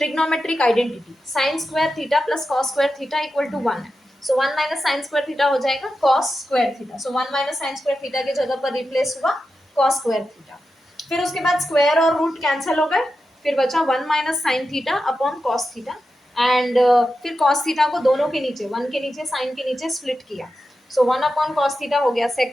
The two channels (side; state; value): both; normal; correlation 0.90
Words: identity sine square theta plus cos square theta equal to 1 है। So 1 minus sine square theta हो जाएगा cos square theta. So 1 minus sine square theta की जगह पर replace हुआ कॉस स्क्वायर थीटा। फिर उसके बाद स्क्वायर और रूट कैंसिल हो गए, फिर बचा 1 minus sine theta upon cos theta and फिर कॉस थीटा को दोनों के नीचे 1 के नीचे साइन के नीचे स्प्लिट किया। सो 1 अपॉन कॉस थीटा हो गया